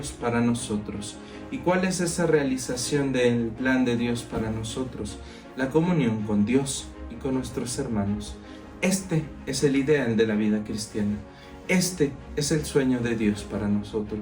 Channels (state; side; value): identical; both; correlation 1.00